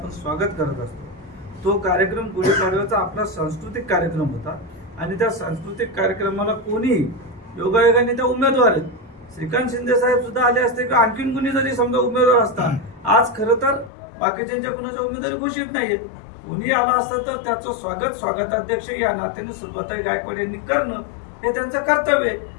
स्वागत करत असतो. तो कार्यक्रम गुढीपाडव्याचा आपला सांस्कृतिक कार्यक्रम होता आणि त्या सांस्कृतिक कार्यक्रमाला कोणी योगायोगाने त्या उमेदवार आहेत. श्रीकांत शिंदे साहेब सुद्धा आले असते किंवा आणखीन कुणी जरी समजा उमेदवार असतात. आज खरं तर बाकीच्या कुणाच्या उमेदवारी घोषित नाहीयेत. कोणी आला असतं तर त्याचं स्वागताध्यक्ष या नात्याने सुलभाताई गायकवाड यांनी करणं हे त्यांचं कर्तव्य आहे.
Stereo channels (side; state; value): right; drops out; at 13.9 s